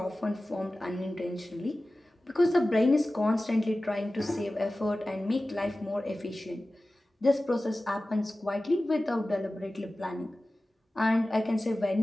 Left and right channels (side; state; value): both; normal; correlation 0.96